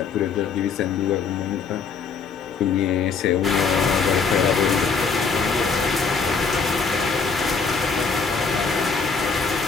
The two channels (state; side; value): quieter; right; 5.3 dB